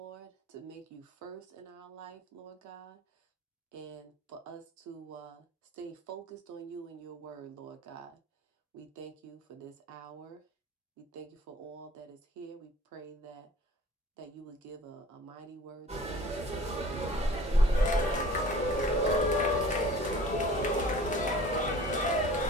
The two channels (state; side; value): normal; both; correlation 0.46